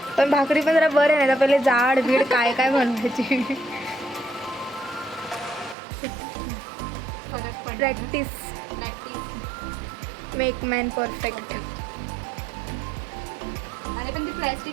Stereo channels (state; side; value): drops out; left; at 5.8 s